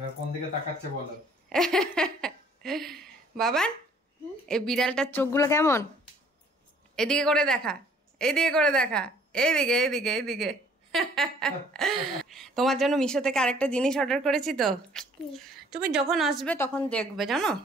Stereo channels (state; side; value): normal; both; correlation 0.58